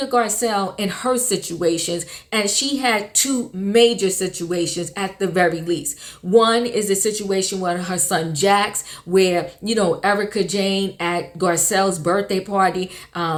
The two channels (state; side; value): identical; both; correlation 1.00